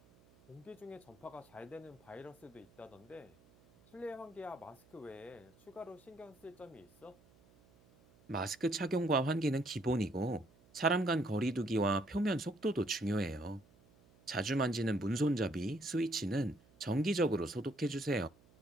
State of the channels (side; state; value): right; noise; hum, 28 dB below the sound